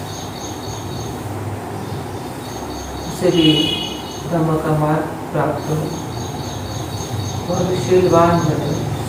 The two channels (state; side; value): identical; both; correlation 1.00